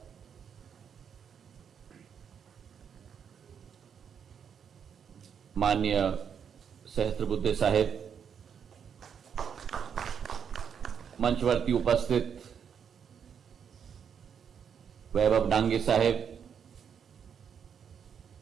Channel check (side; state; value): left; quieter; 7.5 dB